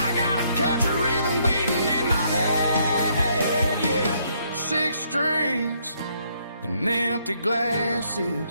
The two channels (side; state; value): both; inverted; correlation -0.71